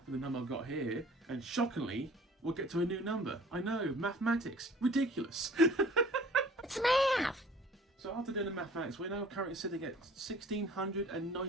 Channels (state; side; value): normal; both; correlation 0.50